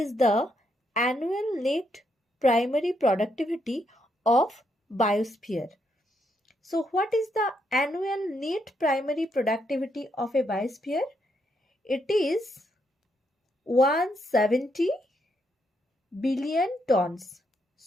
the annual net primary productivity of biosphere? So what is the annual net primary productivity of a biosphere? It is 170 billion tons.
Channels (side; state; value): both; normal; correlation 0.77